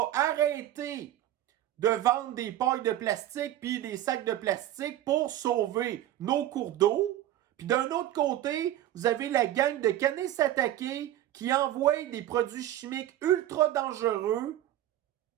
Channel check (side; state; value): left; quieter; 13.0 dB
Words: arrêté de vendre des pailles de plastique puis des sacs de plastique pour sauver nos cours d'eau. Puis d'un autre côté, vous avez la gang de Kanesatake qui envoie des produits chimiques ultra dangereux